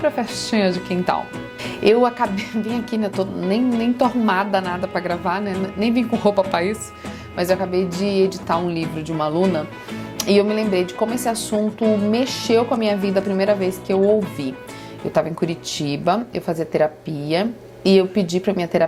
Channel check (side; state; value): both; identical; correlation 1.00